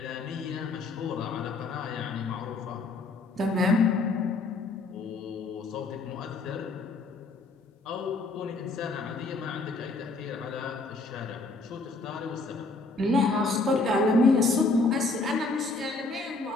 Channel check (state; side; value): quieter; right; 3.5 dB